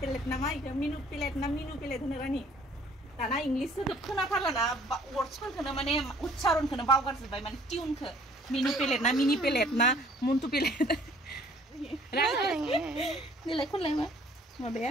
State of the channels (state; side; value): normal; both; correlation 0.57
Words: पेलेट नामा इखौ मेनु पेलेट होनो रानि दाना इंलिस सोदोब खोनाथारलाना वर्डसफोरखौनो माने उच्चारणखौनो बावगारजोब्बाय माने टिउनखौ मेनु पेलेट ना मिनि पेलेट ना मन्टु पेलेट देलाय खनलाय मा माबाया